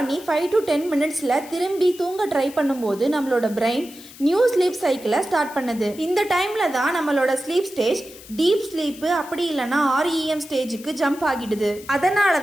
5 to 10 மினிட்ஸ்ல திரும்பி தூங்க ட்ரை பண்ணும்போது நம்மளோட பிரெயின் நியூ ஸ்லீப் சைக்கிளை ஸ்டார்ட் பண்ணுது. இந்த டைம்ல தான் நம்மளோட ஸ்லீப் ஸ்டேஜ் டீப் ஸ்லீப் அப்படி இல்லைன்னா REM ஸ்டேஜுக்கு ஜம்ப் ஆகிடுது. அதனால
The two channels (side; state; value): left; noise; hiss, 18 dB below the sound